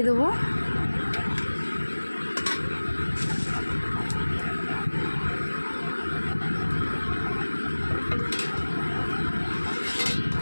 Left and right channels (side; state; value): both; inverted; correlation -1.00